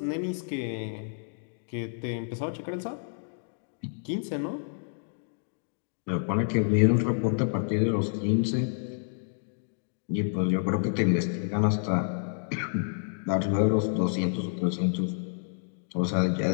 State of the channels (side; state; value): right; silent; digital silence